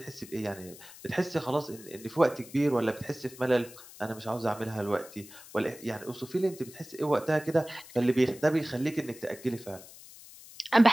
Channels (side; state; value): left; noise; hiss, 18 dB below the sound